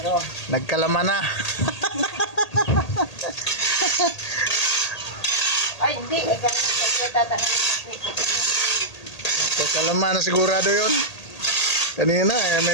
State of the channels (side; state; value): right; late; 1.8 ms